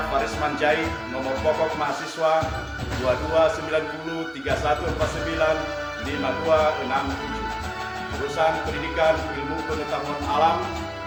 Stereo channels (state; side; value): identical; both; correlation 1.00